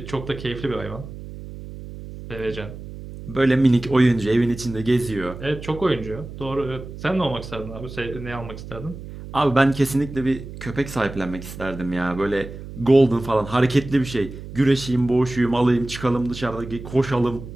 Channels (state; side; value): noise; right; hum, 12 dB below the sound